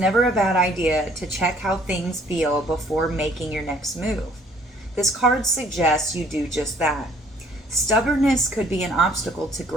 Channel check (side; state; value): both; normal; correlation 0.60